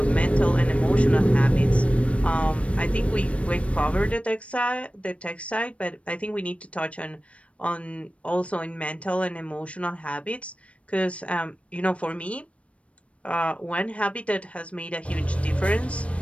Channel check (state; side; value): late; right; 0.063 ms